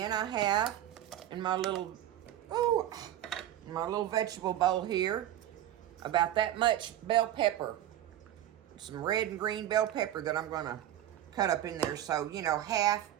I have in my little vegetable bowl here, about that much bell pepper, some red and green bell pepper that I'm going to cut up in there. So, half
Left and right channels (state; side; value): quieter; left; 12.2 dB